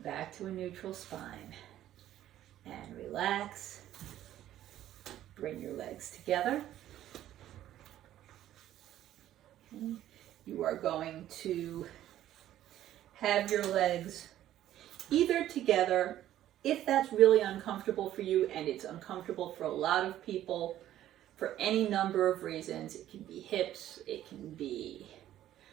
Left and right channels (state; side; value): quieter; left; 12.6 dB